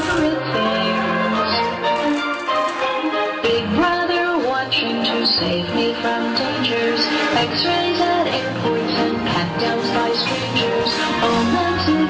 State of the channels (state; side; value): identical; both; correlation 1.00